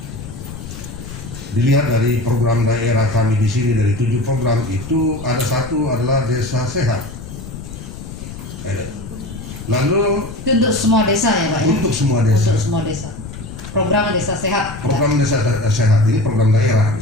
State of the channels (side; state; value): left; noise; rumble, 11 dB below the sound